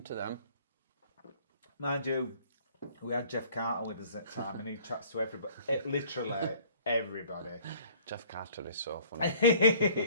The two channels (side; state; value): both; inverted; correlation -0.55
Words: to them. Mind you, we had Jeff Carter with us at the time, and he chats to everybody. Literally everybody. Jeff Carter is so funny.